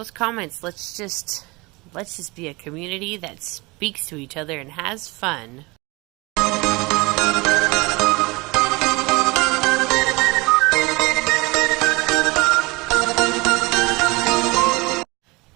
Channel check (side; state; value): left; quieter; 24.6 dB